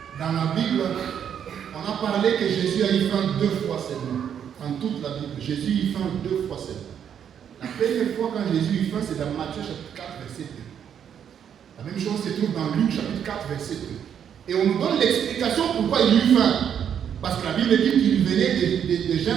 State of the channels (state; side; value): quieter; left; 8.6 dB